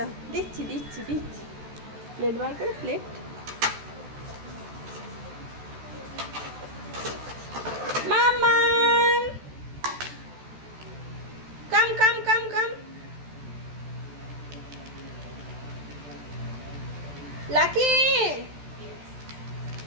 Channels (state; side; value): late; left; 14 ms